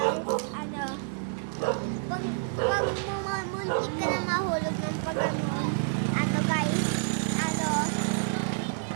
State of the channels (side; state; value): left; silent; 58 dB below the other